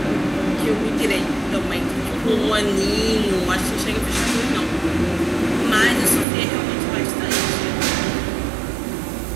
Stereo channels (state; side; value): drops out; left; at 6.2 s